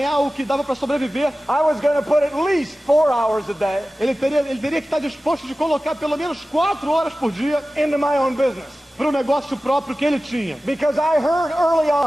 o que dava para sobreviver, I was going to put at least 4 hours a day. Ele teria que estar disposto de colocar pelo menos 4 horas por dia into my own business. Para o negócio próprio que ele tinha. Because I heard early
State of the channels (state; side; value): normal; both; correlation 0.96